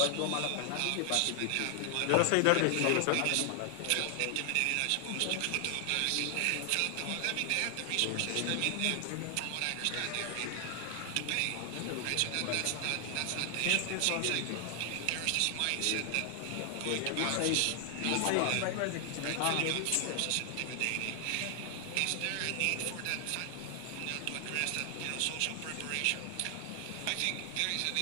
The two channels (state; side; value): different; both; correlation 0.00